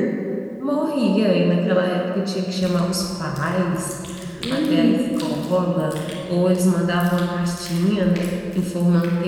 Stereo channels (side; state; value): both; identical; correlation 1.00